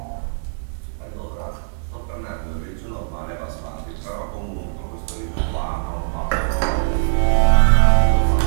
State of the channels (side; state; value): left; silent; 56 dB below the other